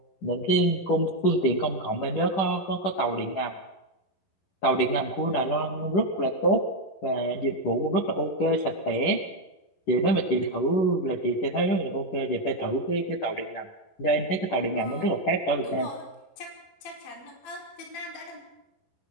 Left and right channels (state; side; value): late; right; 10 ms